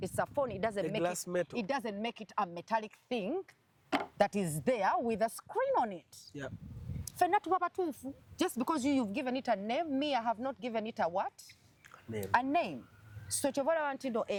a phone, it doesn't make it a metallic thing that is there with a screen on it. Yeah. Just because you've given it a name, me, I have not given it a what? Name. A name. So chovola wantindo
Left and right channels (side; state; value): both; identical; correlation 1.00